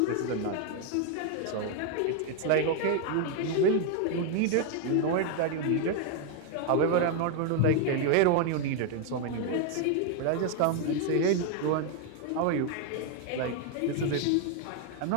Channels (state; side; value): different; both; correlation 0.01